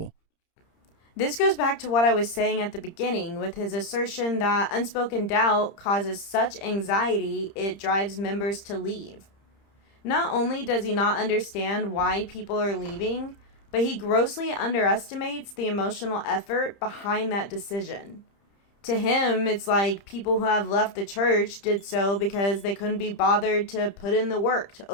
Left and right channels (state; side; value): late; right; 30 ms